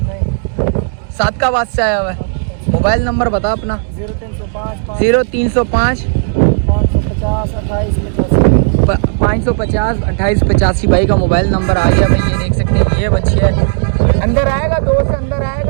सादकाबाद से आया हुआ है। मोबाइल नंबर बता अपना। 0305 550 2885 भाई का मोबाइल नंबर आ गया भाई। ये देख सकते हैं ये बच्चे है। अंदर आएगा 2 से अंदर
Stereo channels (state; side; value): silent; left; digital silence